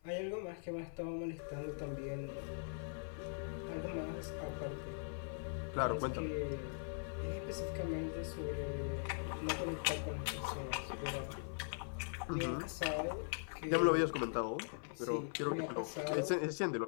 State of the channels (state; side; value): silent; right; 50 dB below the other